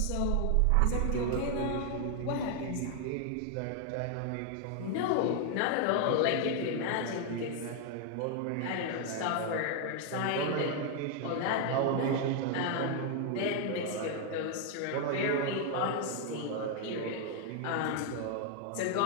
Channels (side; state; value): both; different; correlation 0.00